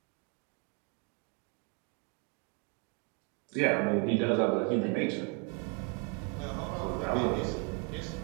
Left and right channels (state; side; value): quieter; left; 33.0 dB